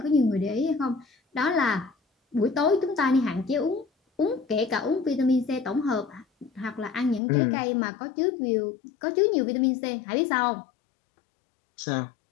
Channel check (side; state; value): right; drops out; at 7.2 s